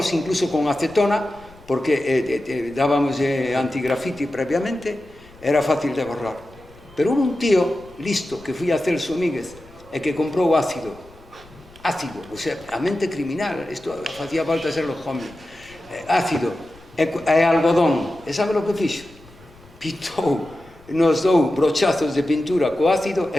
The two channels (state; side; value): noise; left; rumble, 24 dB below the sound